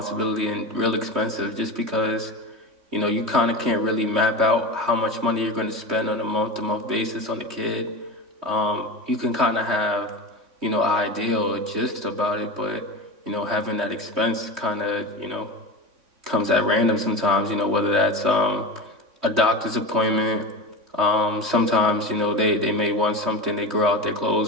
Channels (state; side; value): late; left; 3.1 ms